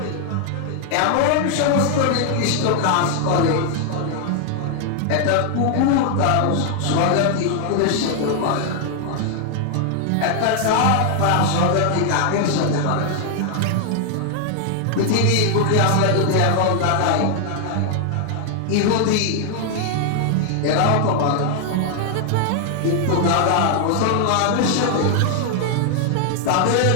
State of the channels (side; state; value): both; different; correlation 0.00